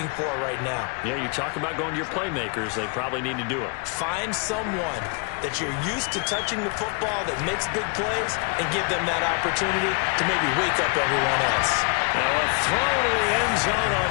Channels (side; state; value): right; quieter; 34.6 dB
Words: for right now. Yeah, you talk about going to your playmakers. They probably need to do it. Find someone that you're used to touching the football that makes big plays and give them that opportunity to maybe wake up everyone else. Now a throw to the end zone on